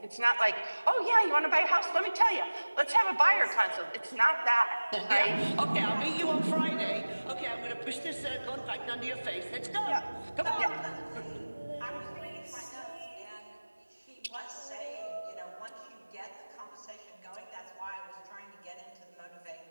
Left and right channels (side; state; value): both; inverted; correlation -1.00